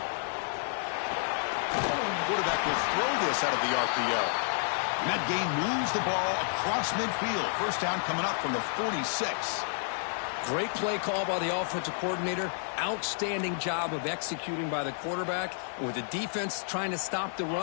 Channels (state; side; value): silent; right; 58 dB below the other